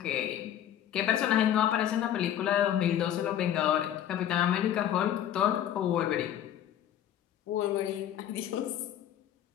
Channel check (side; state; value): right; quieter; 10.8 dB